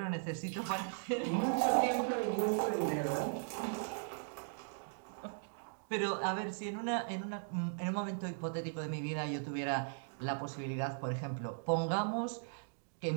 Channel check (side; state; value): left; silent; digital silence